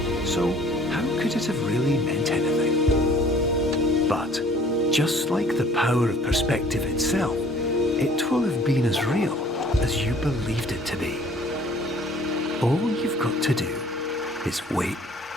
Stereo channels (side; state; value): both; normal; correlation 0.54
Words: So how could it have really meant anything? But just like the power of perspective itself, it will have been as real as you believed it to be. All you've got to do is wait